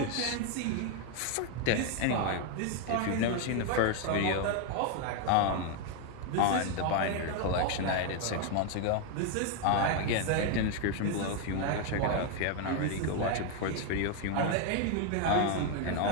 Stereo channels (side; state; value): both; different; correlation 0.01